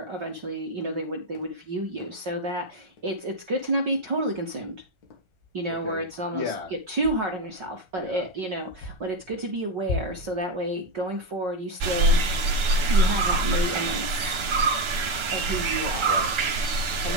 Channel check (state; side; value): late; left; 1.4 ms